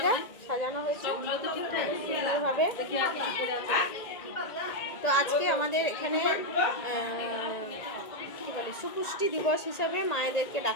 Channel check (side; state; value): right; late; 1.8 ms